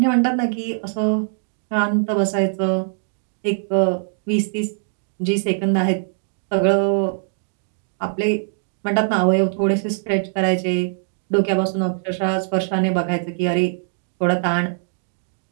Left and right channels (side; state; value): left; silent; digital silence